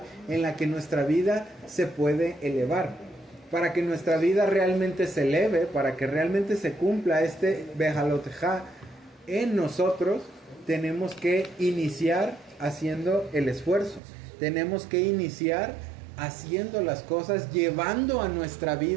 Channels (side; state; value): left; drops out; at 14.0 s